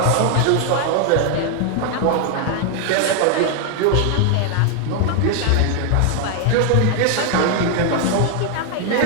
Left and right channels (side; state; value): both; different; correlation 0.00